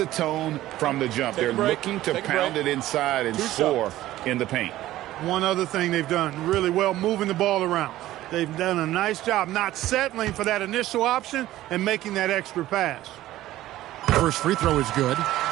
tone from the jump. They're looking to pound it inside and score in the paint. One other thing they've done really well, moving the ball around. They've done a nice job not settling for that initial option and making that extra pass. First free throw is good.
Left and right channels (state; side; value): quieter; left; 15.0 dB